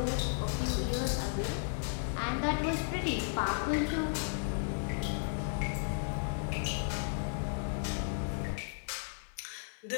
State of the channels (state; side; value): silent; right; digital silence